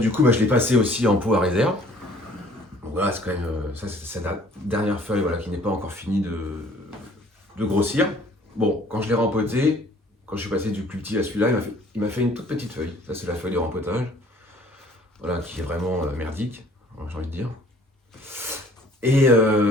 coup, je l'ai passé aussi en pot à réserve. Donc voilà, c'est quand même. Ça, c'est la dernière feuille voilà, qui n'est pas encore finie de grossir. Bon, quand je l'ai rempoté, quand je suis passé du plus petit à celui-là, il m'a fait une toute petite feuille. Ça, c'est la feuille de rempotage. Voilà, qui est vraiment merdique, j'ai envie de dire. Et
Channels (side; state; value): both; normal; correlation 0.55